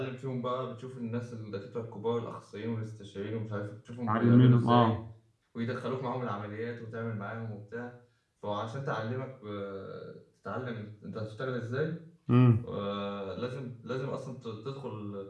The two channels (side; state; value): both; identical; correlation 1.00